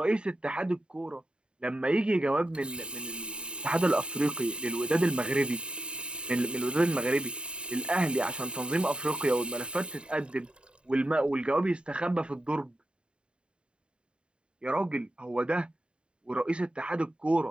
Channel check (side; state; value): left; late; 0.052 ms